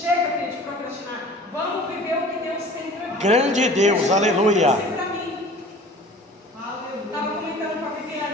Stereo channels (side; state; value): both; normal; correlation 0.44